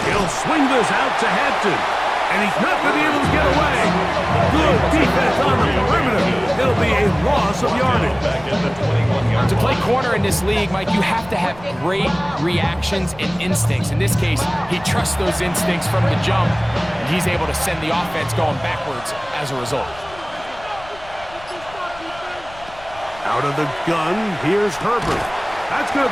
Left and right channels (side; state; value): left; noise; rumble, 21 dB below the sound